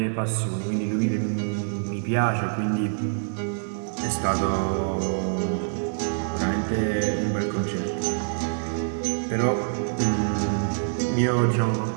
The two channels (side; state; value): left; silent; digital silence